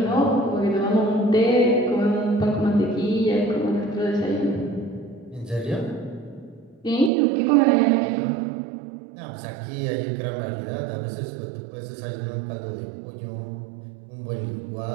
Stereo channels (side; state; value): left; drops out; at 7.1 s